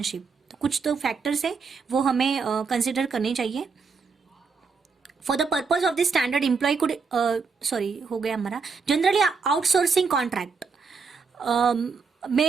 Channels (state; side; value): quieter; left; 5.1 dB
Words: कुछ तो फैक्टर्स है वो हमें कंसिडर करने चाहिए. For the purpose of this standard employee could हो गया हमारा. Generally outsourcing contract